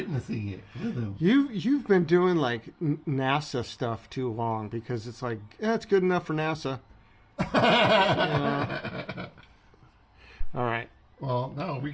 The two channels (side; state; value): both; identical; correlation 1.00